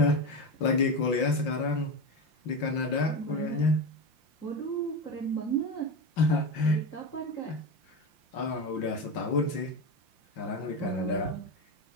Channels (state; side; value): late; right; 5.7 ms